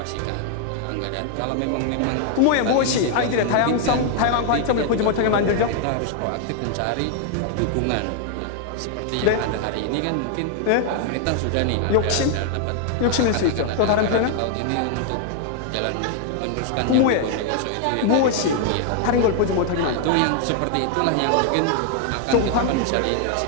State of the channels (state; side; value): different; both; correlation 0.00